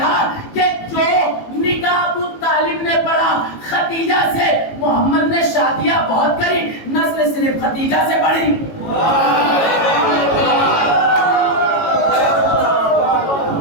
کہ جو نکاح ابو طالب نے پڑھا خدیجہ سے، محمد نے شادیاں بہت کری، نسل صرف خدیجہ سے بڑھی۔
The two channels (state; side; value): late; right; 18 ms